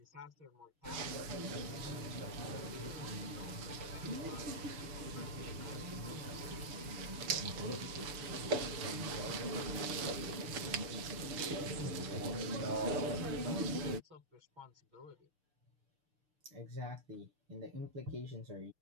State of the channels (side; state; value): left; late; 6.8 ms